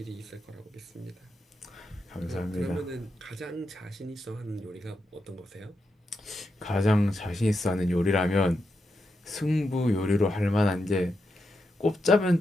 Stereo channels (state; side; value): normal; both; correlation 0.85